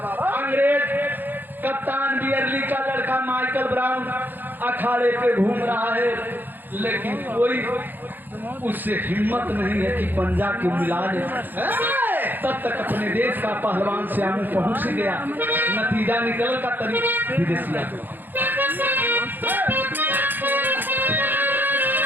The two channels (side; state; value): left; late; 0.090 ms